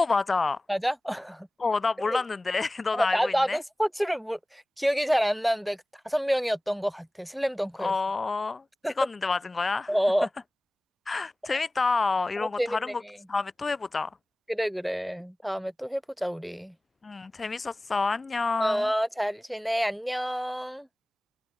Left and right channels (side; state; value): both; normal; correlation 0.98